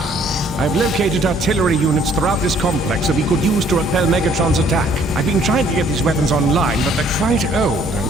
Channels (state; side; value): normal; both; correlation 0.61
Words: I've located artillery units throughout this complex that we could use to repel Megatron's attack. I've been trying to get these weapons online, but they're quite old.